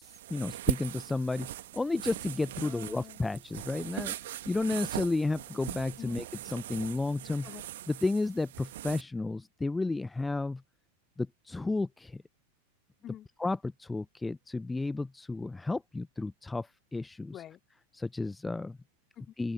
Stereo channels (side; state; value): both; normal; correlation 0.83